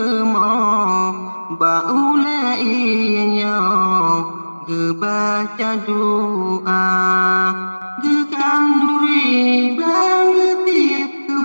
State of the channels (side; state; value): both; inverted; correlation -1.00